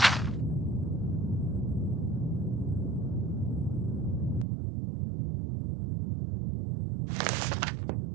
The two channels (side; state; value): left; drops out; at 4.5 s